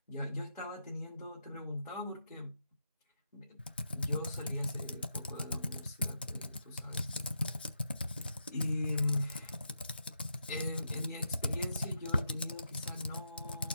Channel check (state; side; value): inverted; both; correlation -0.83